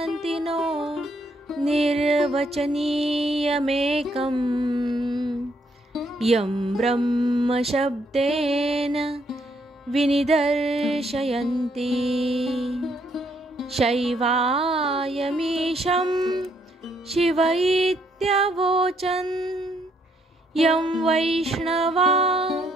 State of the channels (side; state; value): both; normal; correlation 0.72